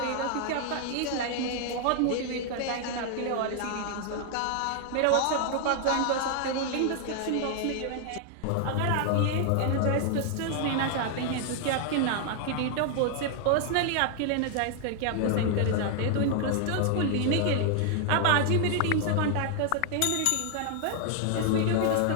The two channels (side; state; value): both; different; correlation 0.00